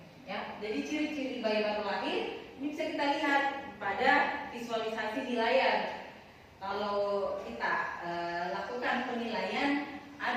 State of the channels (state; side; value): identical; both; correlation 1.00